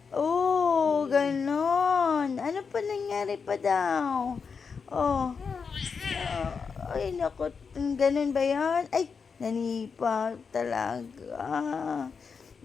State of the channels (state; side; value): quieter; right; 5.6 dB